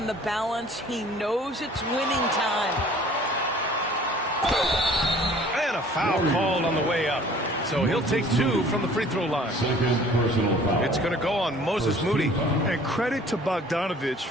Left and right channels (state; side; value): normal; both; correlation 0.51